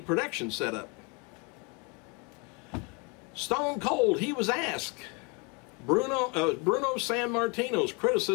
production setup. Stone Cold, he was asked Bruno Sammartino's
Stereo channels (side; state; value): right; quieter; 30.0 dB